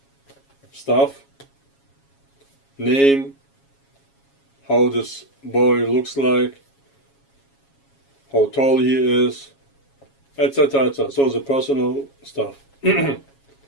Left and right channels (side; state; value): right; late; 7.3 ms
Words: stuff, name, how this boy looks like, how tall he is, etc., etc. So the personal stuff.